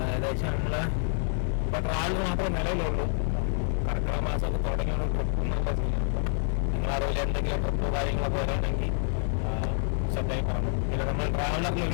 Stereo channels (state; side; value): silent; right; 59 dB below the other